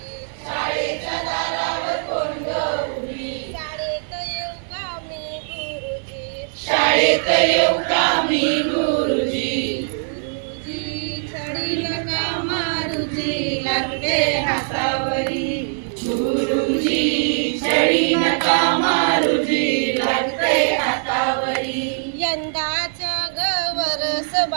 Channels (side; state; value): left; silent; 58 dB below the other